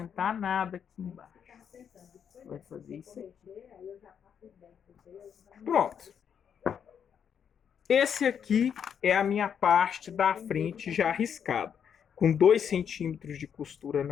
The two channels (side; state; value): right; quieter; 7.9 dB